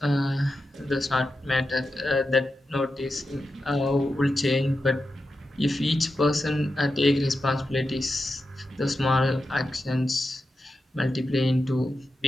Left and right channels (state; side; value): normal; both; correlation 0.90